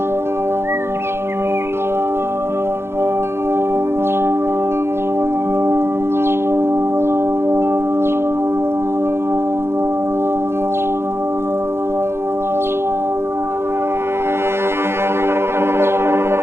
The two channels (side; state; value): left; late; 0.12 ms